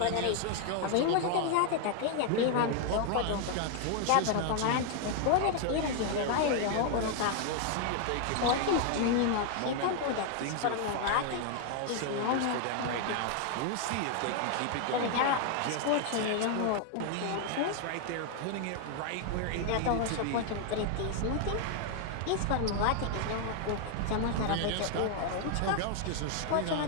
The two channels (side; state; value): both; different; correlation 0.00